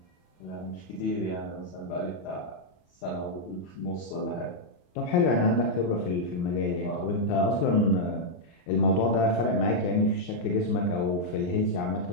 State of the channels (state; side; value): late; right; 34 ms